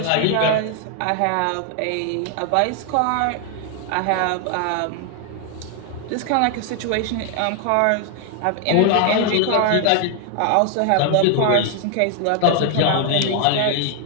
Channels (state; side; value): different; both; correlation 0.00